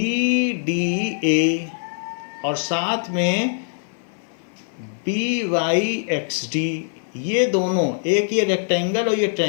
डी ए और साथ में बी वाई एक्स डी, ये दोनों, एक ये रेक्टेंगल और ये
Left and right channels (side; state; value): right; silent; 57 dB below the other